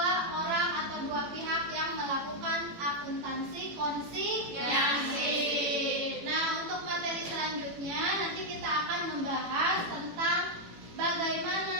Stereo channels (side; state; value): left; late; 18 ms